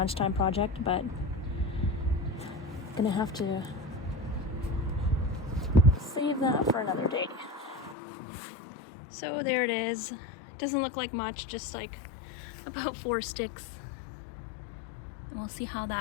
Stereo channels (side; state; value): right; drops out; at 8.0 s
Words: project, but I'm gonna have to save that for another day. So there it is. It doesn't look like much, just like about 4 sticks, and we'll see how